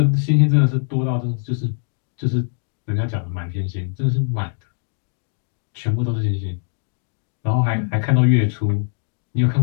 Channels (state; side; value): silent; right; 65 dB below the other